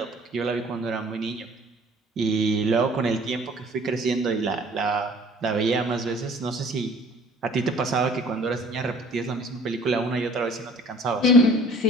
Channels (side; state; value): both; normal; correlation 0.52